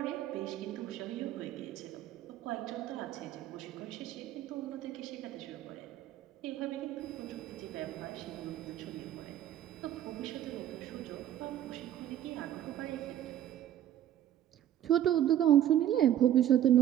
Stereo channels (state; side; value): quieter; left; 11.5 dB